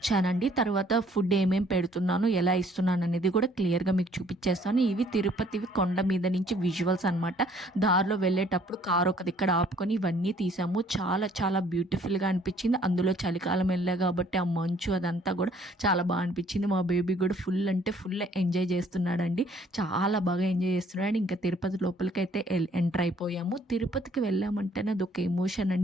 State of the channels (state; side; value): normal; both; correlation 0.60